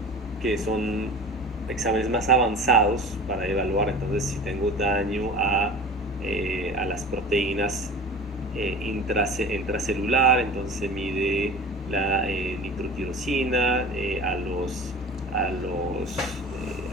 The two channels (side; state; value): both; normal; correlation 0.37